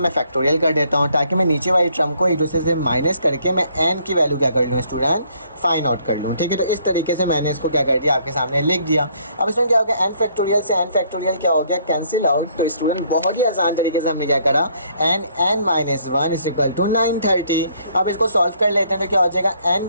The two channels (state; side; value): inverted; both; correlation -0.65